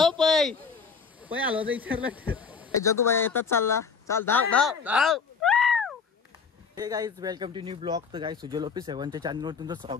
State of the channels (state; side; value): quieter; right; 5.6 dB